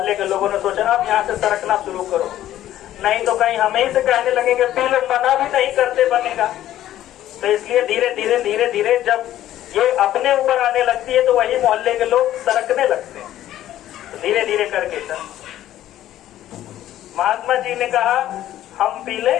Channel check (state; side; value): quieter; right; 12.9 dB